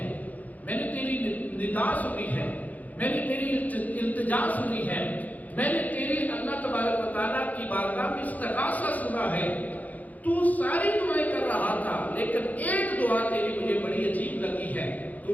میں نے تیری ندا سنی ہے، میں نے تیری التجا سنی ہے، میں نے تیری اللہ تبارک و تعالیٰ کی بارگاہ میں استغاثہ سنا ہے، تو ساری دعائیں کر رہا تھا، لیکن ایک دعا تیری مجھے بڑی عجیب لگی ہے۔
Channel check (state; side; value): late; right; 0.078 ms